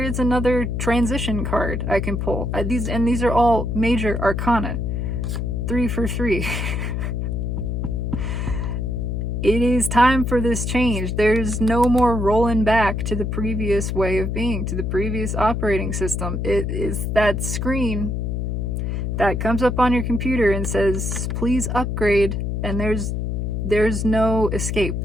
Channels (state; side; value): noise; left; hum, 1 dB below the sound